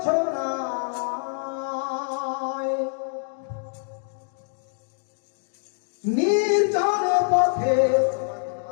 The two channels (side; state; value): right; silent; 61 dB below the other